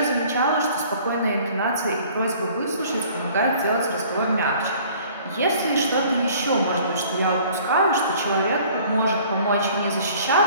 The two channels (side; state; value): both; inverted; correlation -0.52